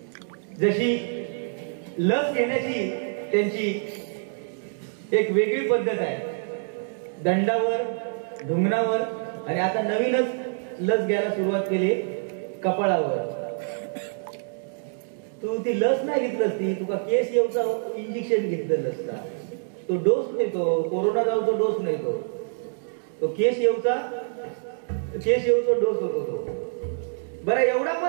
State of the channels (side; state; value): left; silent; digital silence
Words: जशी लस घेण्याची त्यांची एक वेगळी पद्धत आहे, दंडावर, ढुंगणावर, आणि आता नवीनच लस घ्यायला सुरुवात केली कपाळावर. तू ती लस नाही घेतलंस, ती तुका केस येऊचा इंजेक्शन घेतलेलं असता. तो डोस नाही, तो कोरोना जाऊचा डोस नाही, तो केस येऊचा डोस होतो तो. बरं एवढा